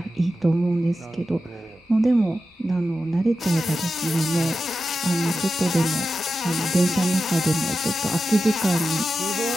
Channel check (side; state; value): both; normal; correlation 0.91